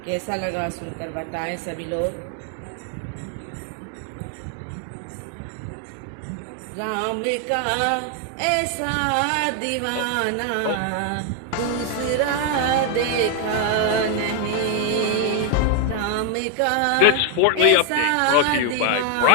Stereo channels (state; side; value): different; both; correlation 0.00